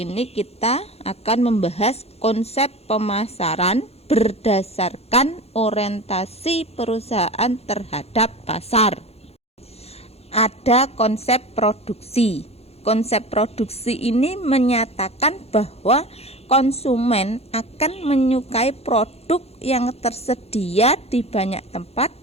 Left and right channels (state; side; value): late; right; 0.30 ms